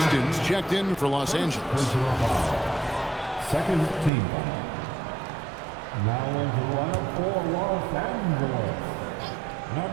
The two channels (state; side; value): drops out; left; at 4.1 s